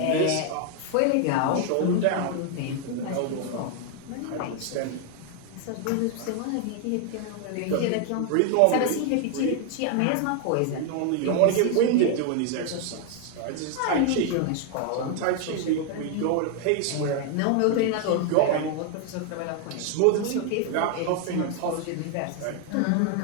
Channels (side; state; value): both; different; correlation 0.00